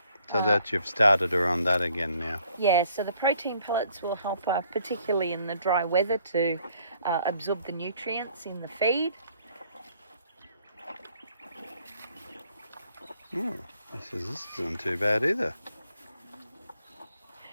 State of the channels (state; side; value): inverted; both; correlation -0.63